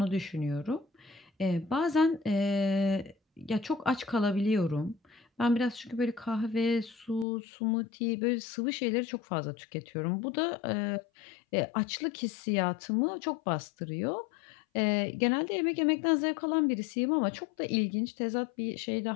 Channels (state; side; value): drops out; right; at 7.2 s